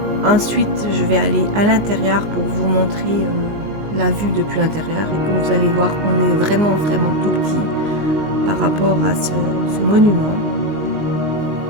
Ensuite je vais aller à l'intérieur pour vous montrer la vue depuis l'intérieur. Et comme vous allez voir, on est vraiment tout petit par rapport à ce monument.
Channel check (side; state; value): left; late; 19 ms